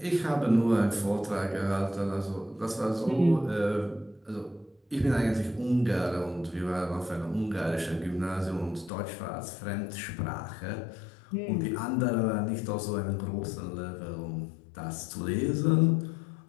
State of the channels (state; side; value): drops out; right; at 8.9 s